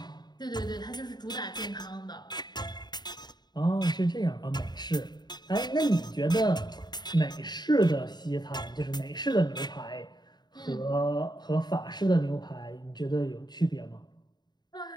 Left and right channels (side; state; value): right; late; 0.20 ms